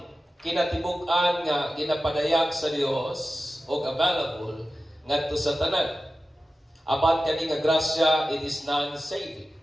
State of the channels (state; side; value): normal; both; correlation 0.94